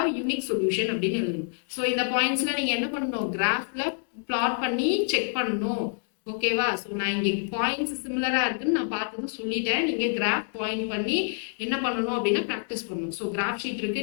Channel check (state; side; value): silent; right; 60 dB below the other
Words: unique solution அப்படினு எழுதணும். so இந்த பாயிண்ட்ஸ்ல நீங்க என்ன பண்ணனும் கிராஃப்ல பிளாட் பண்ணி செக் பண்ணனும். ஓகேவா? ஸோ நான் இங்கே பாயிண்ட்ஸ் சிமிலரா இருக்குன்னு நான் பார்த்தது சொல்லிட்டேன். நீங்க கிராஃப் பாயிண்ட் பண்ணி என்ன பண்ணணும் அப்படின்னா ப்ராக்டிஸ் பண்ணணும். ஸோ கிராஃப் ஷீட்